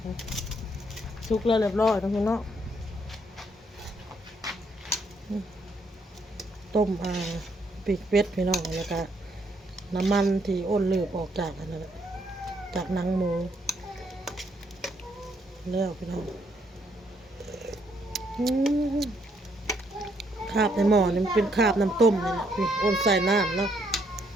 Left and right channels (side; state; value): both; normal; correlation 0.72